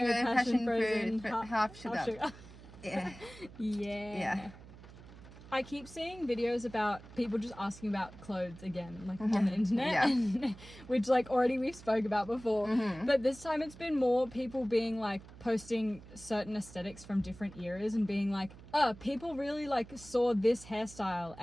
passion frozen half sugar. Yeah. Yeah. I keep seeing videos about people just asking about clothes again, like on the internet, which like already we've spoke about before. But this time it's been more people being like posting certain aesthetics from different eras and being like, people really like saw this hairstyle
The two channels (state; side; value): noise; right; hum, 18 dB below the sound